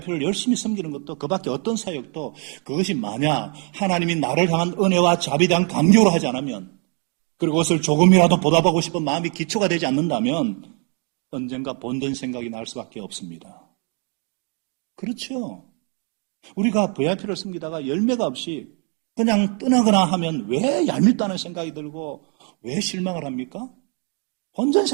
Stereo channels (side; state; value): left; quieter; 38.4 dB